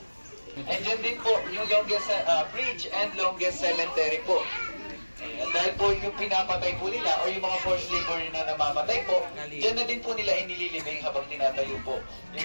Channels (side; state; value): both; inverted; correlation -1.00